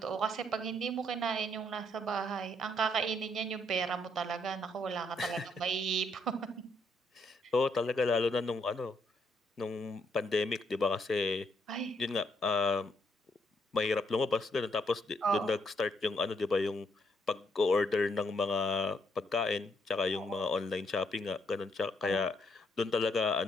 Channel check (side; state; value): both; normal; correlation 0.73